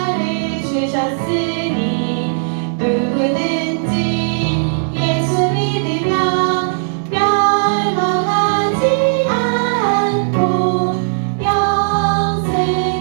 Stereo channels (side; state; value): left; silent; digital silence